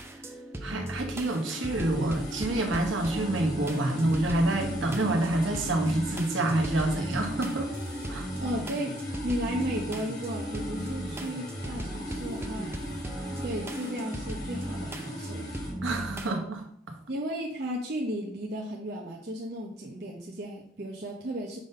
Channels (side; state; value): both; normal; correlation 0.67